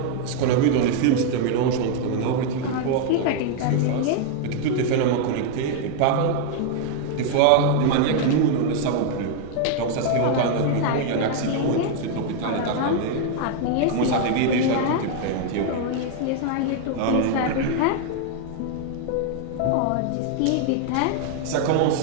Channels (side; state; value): both; different; correlation 0.00